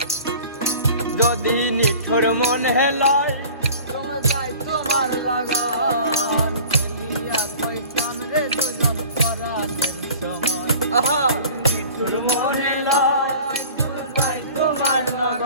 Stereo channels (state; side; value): inverted; both; correlation -0.43